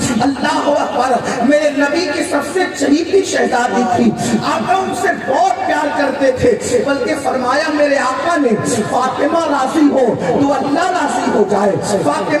اللہ اکبر۔ میرے نبی کی سب سے چہیتی شہزادی تھی، آقا ان سے بہت پیار کرتے تھے، بلکہ فرمایا میرے آقا نے فاطمہ راضی ہو تو اللہ راضی ہو جائے،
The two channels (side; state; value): both; identical; correlation 1.00